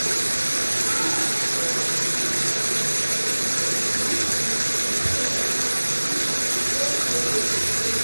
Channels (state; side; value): inverted; both; correlation -1.00